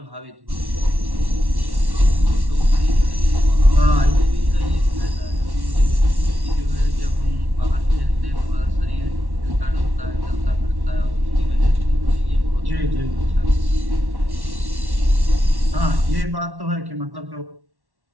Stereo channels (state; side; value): late; left; 1.1 ms